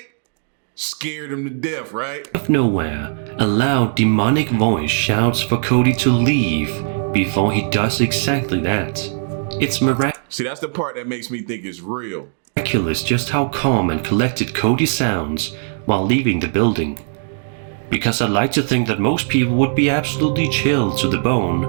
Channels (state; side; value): silent; left; digital silence